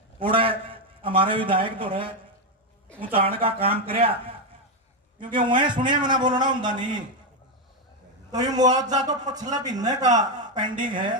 उड़े हमारे विधायक तो रहे ऊंचाण का काम कराया, क्योंकि वह सुने मैंने बोलना होंगे नहीं। तो ये मुआवजा तो पिछले महीने का पेंडिंग है।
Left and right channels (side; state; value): both; normal; correlation 0.06